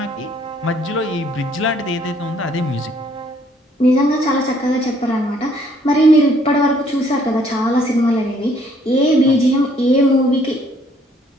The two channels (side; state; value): both; normal; correlation 0.64